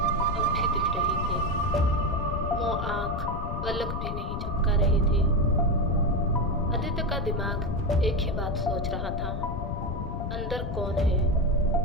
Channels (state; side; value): noise; left; rumble, 4 dB below the sound